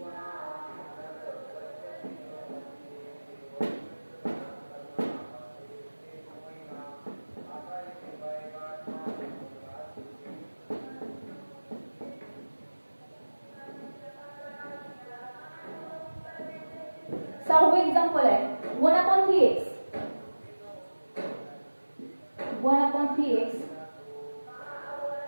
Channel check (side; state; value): both; inverted; correlation -1.00